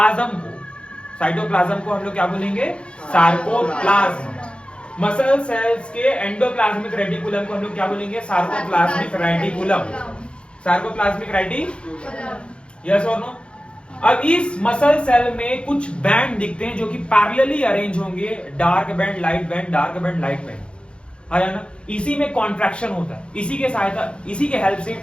को हम लोग क्या बोलेंगे? सार्कोप्लाज्म। मसल सेल्स के एंडोप्लाज्मिक रेटिकुलम को हम लोग क्या बोलेंगे? Sarcoplasmic reticulum. Sarcoplasmic reticulum, yes और नो? अब इस मसल सेल में कुछ बैंड दिखते हैं जो कि पैरेलली अरेंज होंगे, dark band, light band, dark band, light band, है ना? इसी में कॉन्ट्रैक्शन होता है, इसी के हेल्प से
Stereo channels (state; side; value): late; right; 0.057 ms